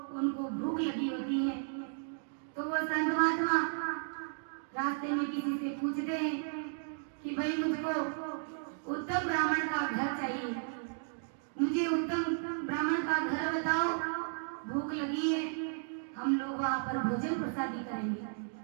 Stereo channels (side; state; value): left; silent; digital silence